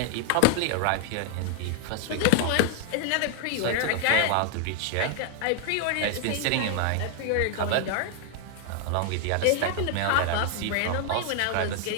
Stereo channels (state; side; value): different; both; correlation 0.00